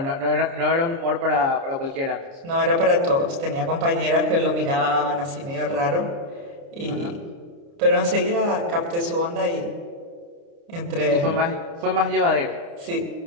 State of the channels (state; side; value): late; left; 29 ms